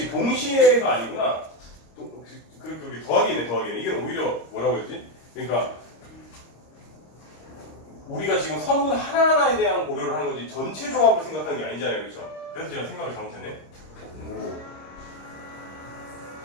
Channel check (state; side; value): late; right; 26 ms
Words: 동시에가 아니구나 그게 더하기네 이게 오히려 뭐라고 했지? 그러니까 우리가 지금 선분 하나하나에 대한 고려를 하는 거지 전체 조합을 생각하는 게 아니잖아요 그렇죠? 그래서 제가 생각을 잘못했네